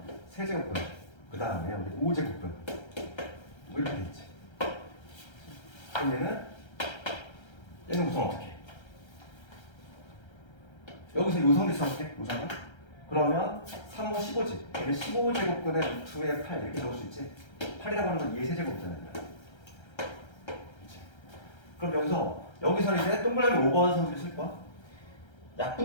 세제곱분 그 다음에 우리 5제곱분 이렇게 되겠지. 그럼 얘는 우선 어떻게 해? 여기서 요성비 써볼게. 우선은 그러면 3, 5, 15지. 얘는 15제곱분의 루트의 8 이렇게 적을 수 있지. 8이라고 하는 건 2의 세제곱이잖아요. 그럼 여기서는 이제 동그라미 5번 성질 쓸 거야.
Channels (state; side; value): late; right; 1.3 ms